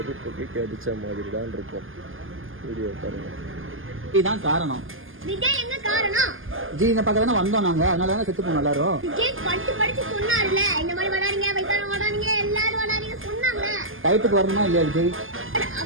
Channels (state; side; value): late; left; 0.59 ms